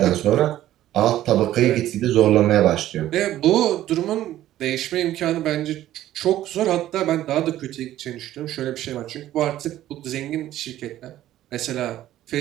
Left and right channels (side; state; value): left; quieter; 13.5 dB